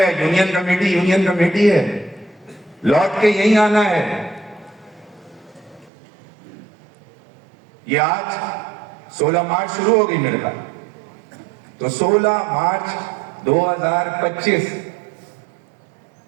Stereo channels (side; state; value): left; drops out; at 5.9 s